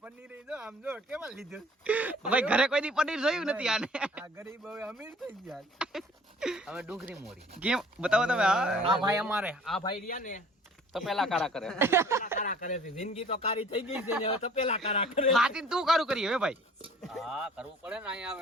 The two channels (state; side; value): normal; both; correlation 0.52